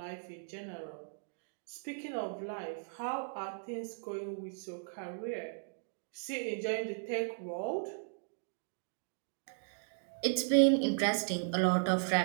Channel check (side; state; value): left; silent; digital silence